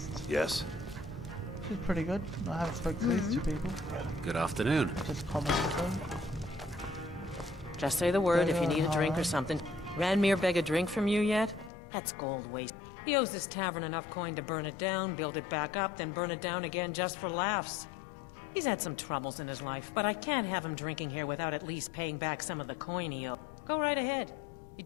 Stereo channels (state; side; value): drops out; right; at 11.7 s